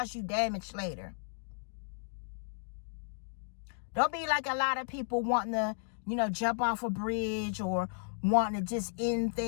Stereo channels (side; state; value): right; silent; digital silence